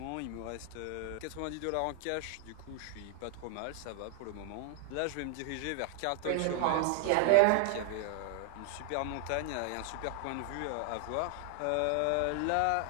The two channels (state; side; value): different; both; correlation 0.00